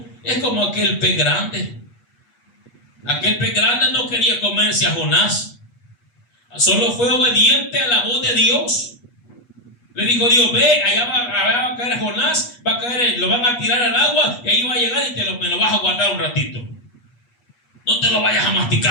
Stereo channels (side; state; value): right; late; 8.3 ms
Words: es como aquel pez grande. Aquel pez grande no quería comerse a Jonás, solo fue obediente a la voz de Dios. Le dijo Dios: ve, allá va a caer Jonás, va a caer, lo van a tirar al agua y ahí va a llegar y me lo vas a guardar un ratito. No te lo vayas a